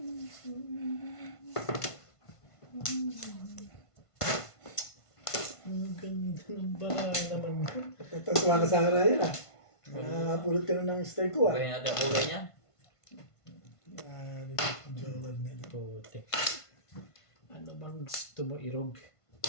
Ang ganda ng bara naman yun. Tatuwa ka sa akin na yun ah. Nakapulot ka na ng style ko ah. Gawin natin ang kulay niya. Jowal na ito. Puti. Ano bang gusto mo irog?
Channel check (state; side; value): late; right; 1.5 ms